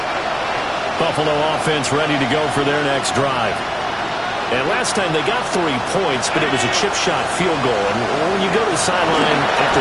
Buffalo offense ready to go for their next drive. And last time they got 3 points, but it was a chip shot field goal. And when you go to the sideline after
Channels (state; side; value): identical; both; correlation 1.00